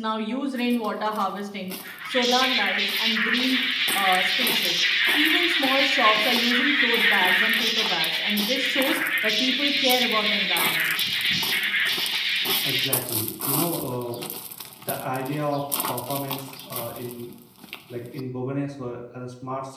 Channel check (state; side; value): identical; both; correlation 1.00